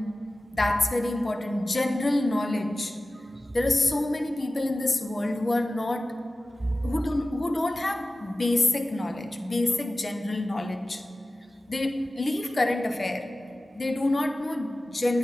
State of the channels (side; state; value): both; normal; correlation 0.96